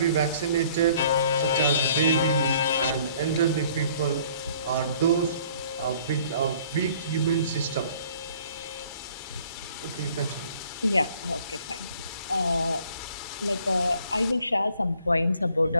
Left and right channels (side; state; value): both; inverted; correlation -0.57